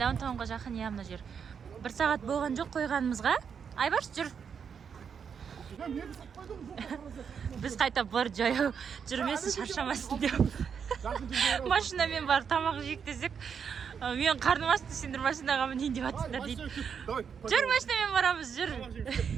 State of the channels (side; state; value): left; quieter; 6.9 dB